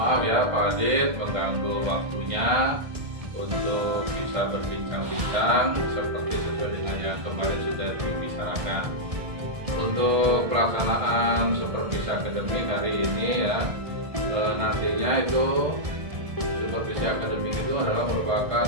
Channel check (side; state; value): left; late; 1.7 ms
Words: ya Pak Adit mengganggu waktunya untuk bisa berbincang-bincang seperti sesuai dengan yang kemarin sudah dibicarakan. Untuk pelaksanaan supervisi akademik hari ini ya, nantinya itu supervisi akademik itu adalah merupakan